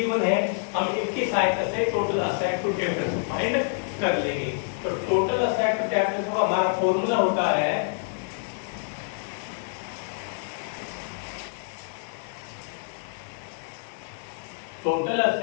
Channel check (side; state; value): right; silent; digital silence